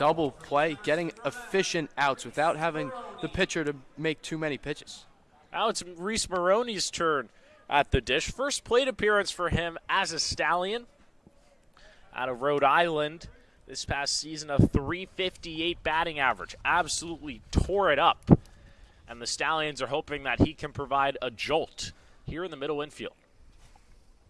play, getting efficient outs without having the pitcher to make too many pitches. Now it's Reese Maroney's turn at the dish. First plate appearance for him as a Stallion out of Rhode Island. This past season, a .358 batting average. Absolutely tore it up. And the Stallions are hoping that he can provide a jolt here in the middle infield.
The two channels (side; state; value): both; identical; correlation 1.00